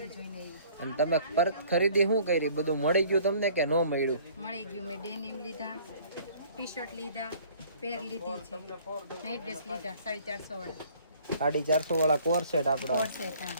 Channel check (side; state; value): both; inverted; correlation -0.55